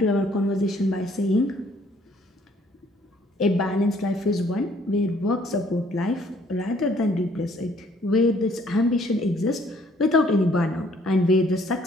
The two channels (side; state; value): both; normal; correlation 0.62